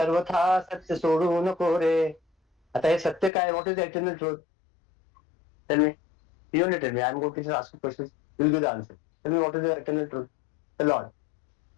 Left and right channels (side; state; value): right; drops out; at 3.3 s